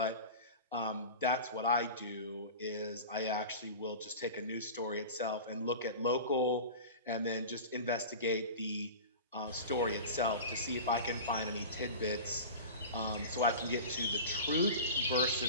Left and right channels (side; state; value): both; inverted; correlation -0.33